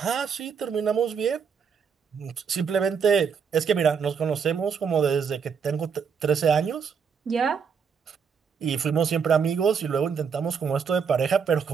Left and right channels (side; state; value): left; quieter; 6.4 dB